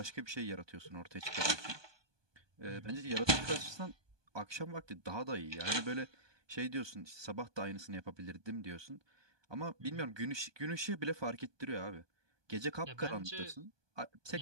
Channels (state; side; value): late; left; 1.2 ms